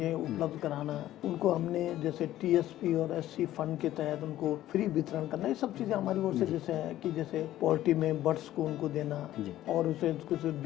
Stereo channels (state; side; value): quieter; right; 13.8 dB